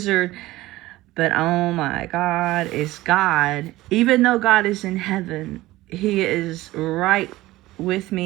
But oh my God is God. Even though God is in heaven, he is right with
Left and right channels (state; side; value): quieter; left; 17.7 dB